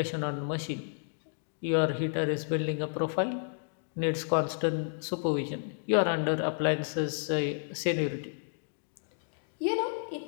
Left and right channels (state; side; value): silent; right; digital silence